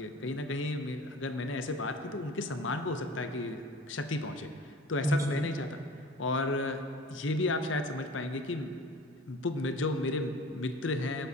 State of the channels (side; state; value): both; normal; correlation 0.42